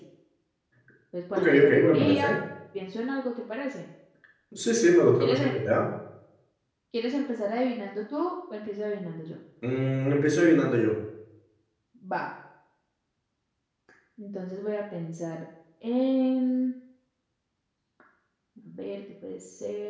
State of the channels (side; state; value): both; identical; correlation 1.00